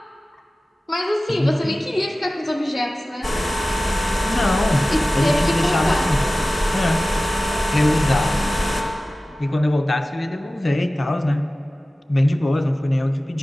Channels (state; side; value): normal; both; correlation 0.97